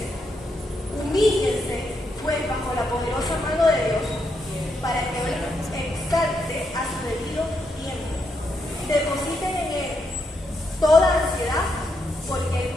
Humíllense, pues, bajo la poderosa mano de Dios, para que Él exalte a su debido tiempo. Depositen en Él toda ansiedad, porque Él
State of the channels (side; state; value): both; normal; correlation 0.80